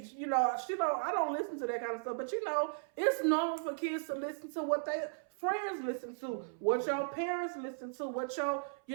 You know, I don't listen to that kind of stuff. But you know, it's normal for kids to listen to what they friends listen to, what your parents listen to, what your, you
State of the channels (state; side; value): silent; left; 54 dB below the other